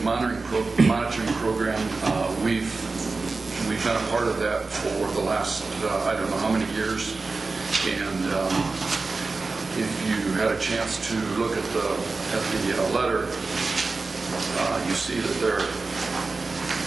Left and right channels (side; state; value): left; quieter; 3.9 dB